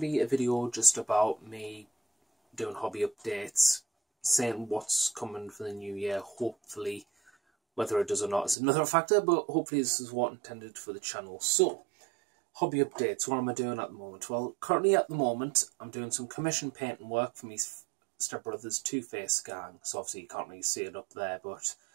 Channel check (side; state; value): left; drops out; at 8.6 s